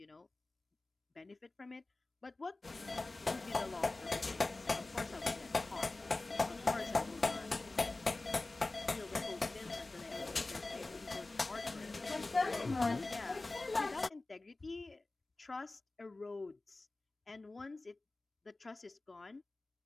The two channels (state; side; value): quieter; right; 3.1 dB